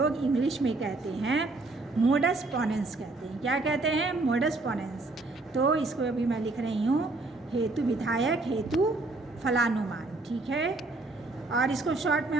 इंग्लिश में कहते हैं मोडस पोनेंस कहते हैं। क्या कहते हैं? मोडस पोनेंस। तो इसको अभी मैं लिख रही हूँ हेतु, विधायक हेतु फलानुमान। ठीक है, और इसको शॉर्ट में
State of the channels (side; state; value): left; quieter; 3.2 dB